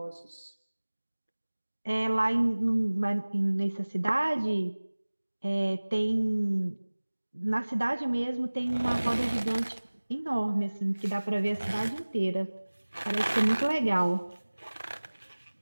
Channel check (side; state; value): both; inverted; correlation -1.00